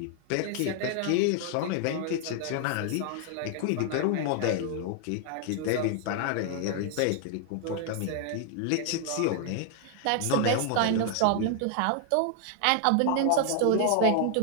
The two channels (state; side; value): different; both; correlation 0.00